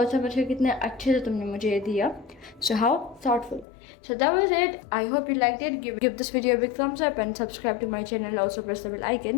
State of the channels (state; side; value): drops out; right; at 3.7 s